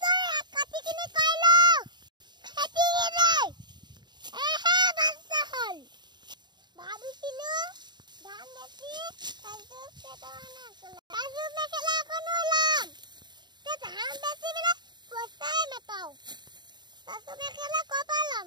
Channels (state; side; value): late; left; 0.21 ms